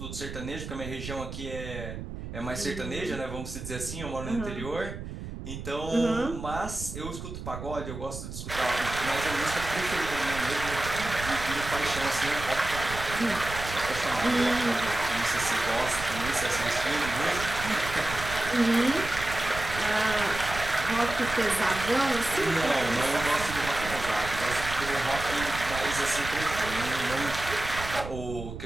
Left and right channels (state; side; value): noise; right; rumble, 9 dB below the sound